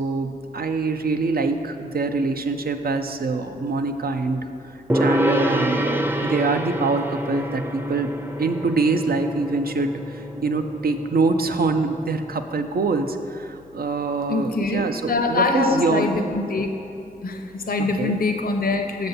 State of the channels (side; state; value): left; noise; hum, 26 dB below the sound